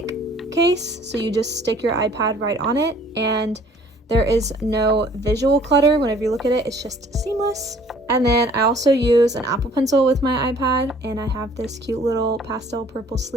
case. So you just stick your iPad right on it, and there is no visual clutter. Whenever you look at it, it's just seamless. And then I also use an Apple Pencil with my iPad, and I have this cute little pastel purple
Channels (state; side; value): normal; both; correlation 0.56